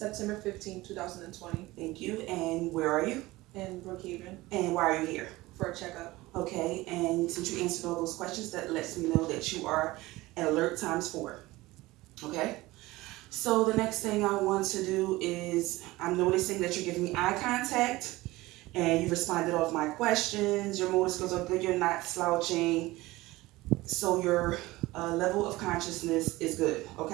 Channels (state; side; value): quieter; left; 19.5 dB